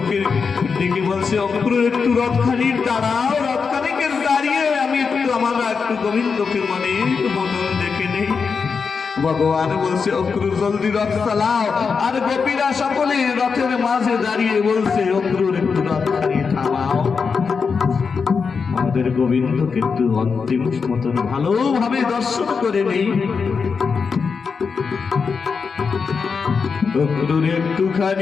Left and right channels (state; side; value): quieter; right; 5.4 dB